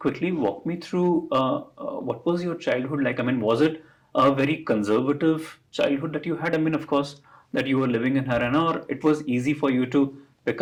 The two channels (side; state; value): both; identical; correlation 1.00